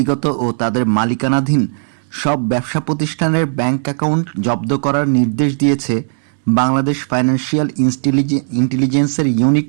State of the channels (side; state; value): left; silent; digital silence